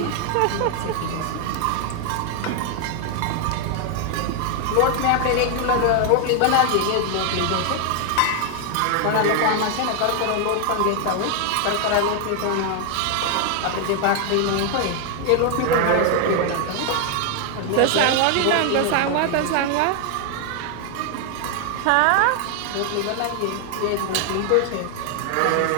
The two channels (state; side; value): different; both; correlation 0.00